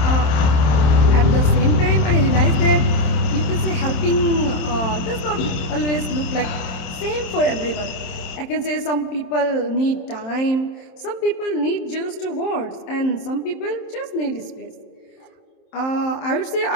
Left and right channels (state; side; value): late; right; 27 ms